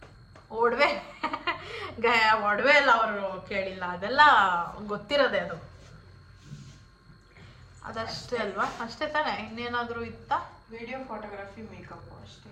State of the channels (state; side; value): identical; both; correlation 1.00